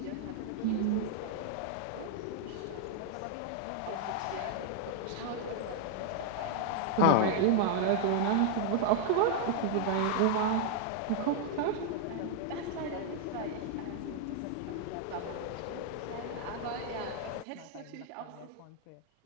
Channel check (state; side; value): different; both; correlation 0.00